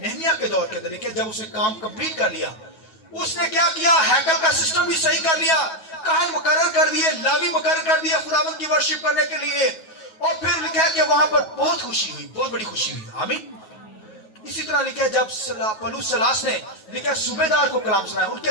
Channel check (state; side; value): late; right; 9.3 ms